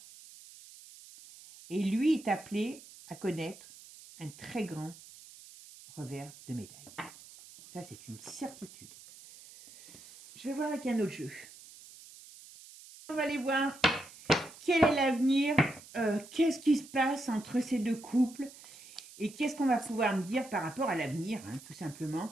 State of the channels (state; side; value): noise; right; hiss, 19 dB below the sound